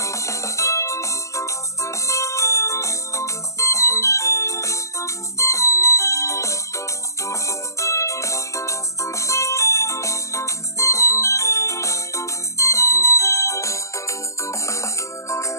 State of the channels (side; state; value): right; late; 0.15 ms